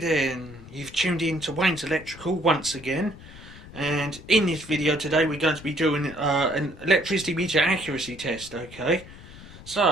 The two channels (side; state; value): left; noise; rumble, 17 dB below the sound